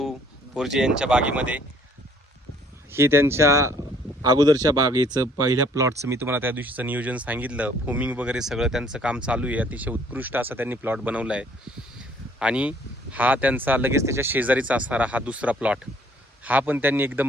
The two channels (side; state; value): both; normal; correlation 0.60